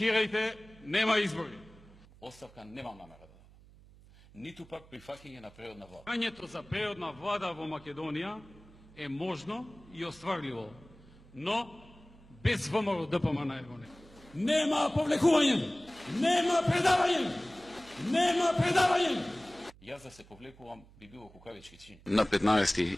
нема избори. Оставка немам намера да дадам. Ниту пак прифаќање на природна влада. Прањето за природна влада во Македонија е можно и остварливо, но без ВМРО ДПМН его не. Нема повлекување, нема предавање, нема предавање. Јас да се повлекувам би било кукавички чин. На 15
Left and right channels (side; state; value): right; noise; hum, 24 dB below the sound